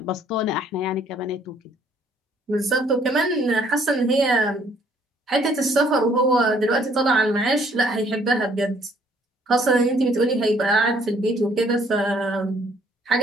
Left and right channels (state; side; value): normal; both; correlation 0.63